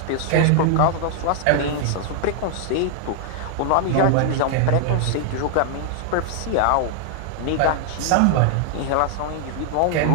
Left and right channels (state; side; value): different; both; correlation 0.00